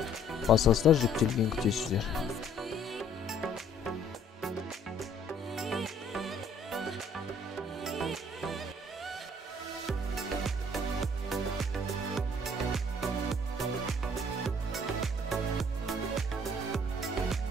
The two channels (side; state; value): both; normal; correlation 0.60